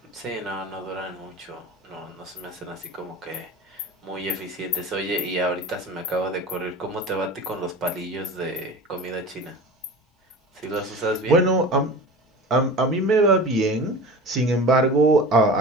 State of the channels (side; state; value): both; normal; correlation 0.34